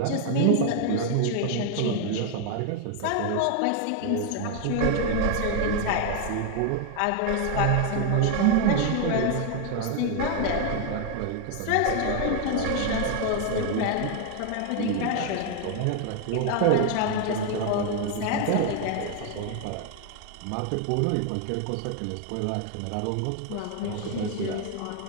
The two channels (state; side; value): different; both; correlation 0.01